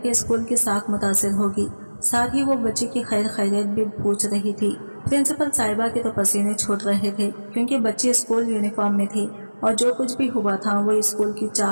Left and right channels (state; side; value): inverted; both; correlation -1.00